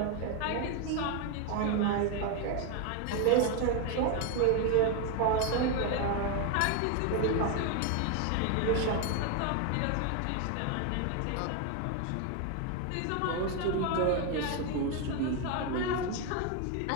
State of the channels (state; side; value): different; both; correlation 0.01